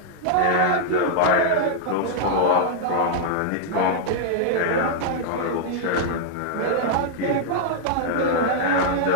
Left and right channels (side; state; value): both; different; correlation -0.01